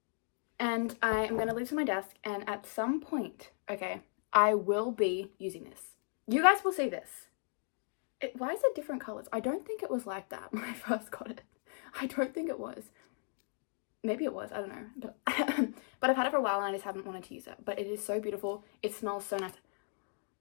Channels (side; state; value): right; silent; 54 dB below the other